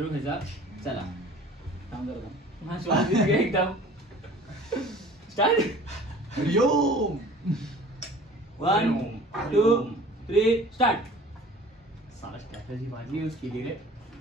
ह्याचा. चला हा श्वास घे एकदम. स्टार्ट. हरिओम. 1 2 3 स्टार्ट. साला स्ट्रॅटेजी भाजी यूज केली रे.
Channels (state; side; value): normal; both; correlation 0.46